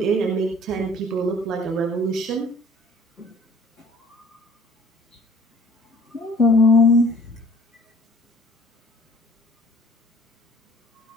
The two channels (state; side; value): normal; both; correlation 0.52